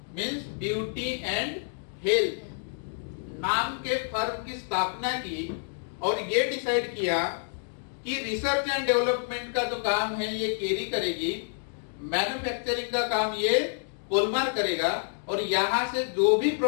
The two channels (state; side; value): silent; right; digital silence